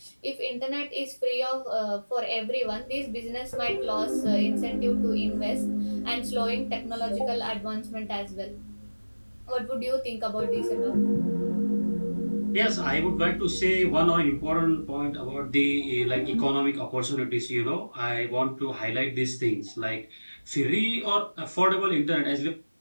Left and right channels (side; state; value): both; inverted; correlation -1.00